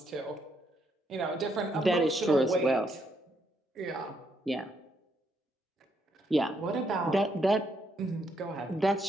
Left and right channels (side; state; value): both; normal; correlation 0.75